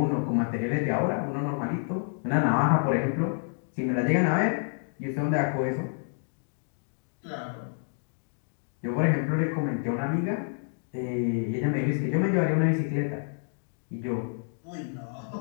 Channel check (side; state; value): right; silent; 59 dB below the other